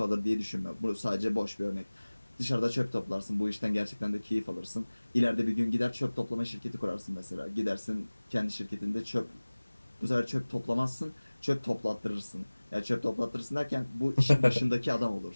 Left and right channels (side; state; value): both; inverted; correlation -1.00